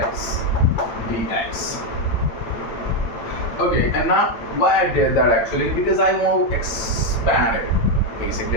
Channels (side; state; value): right; late; 8.9 ms